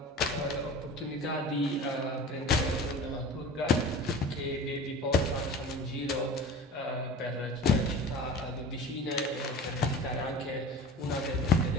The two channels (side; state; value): both; normal; correlation 0.38